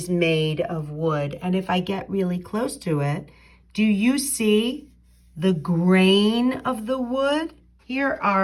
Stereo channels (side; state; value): both; identical; correlation 1.00